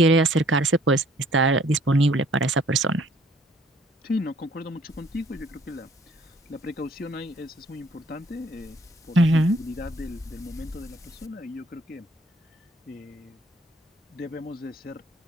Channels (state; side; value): normal; both; correlation 0.59